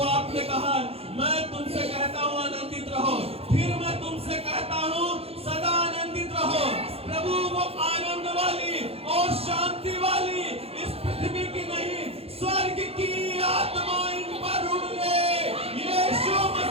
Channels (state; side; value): late; left; 0.29 ms